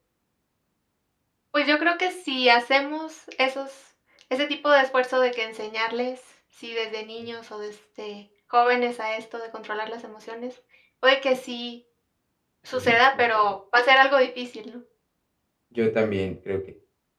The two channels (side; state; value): both; identical; correlation 1.00